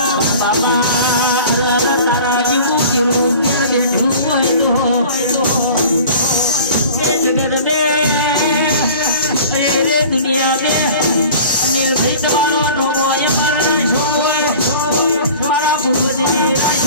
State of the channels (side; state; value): both; inverted; correlation -0.43